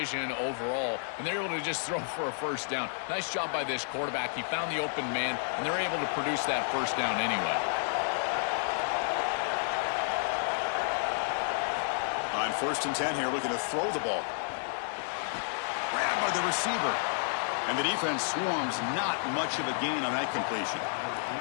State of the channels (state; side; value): silent; right; 57 dB below the other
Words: overall, and they're able to just throw for a first down. Nice job by this quarterback. He found the open man, and they're able to produce that first down anyway. On first and 10 here, looking to throw the ball. Grabbed by the receiver. And the defense swarms, not much of a gain on that completion.